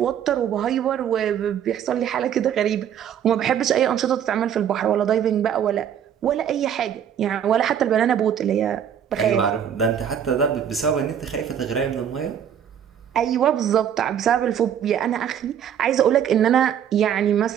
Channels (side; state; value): left; quieter; 9.0 dB